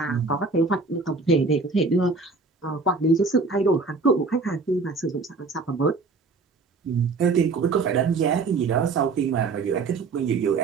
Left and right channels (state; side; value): quieter; left; 4.1 dB